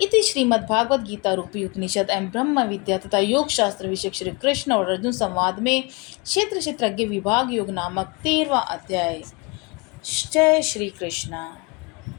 इति श्रीमद्भागवत गीता रूपी उपनिषद एवं ब्रह्म विद्या तथा योग शास्त्र विषय श्री कृष्ण और अर्जुन संवाद में क्षेत्र क्षेत्रज्ञ विभाग योग नामक 13वां अध्याय। जय श्री कृष्ण।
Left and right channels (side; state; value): right; quieter; 28.8 dB